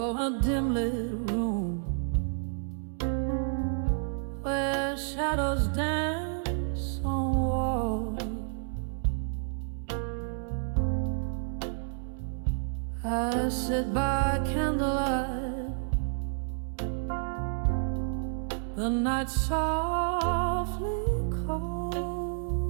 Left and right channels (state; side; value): silent; left; digital silence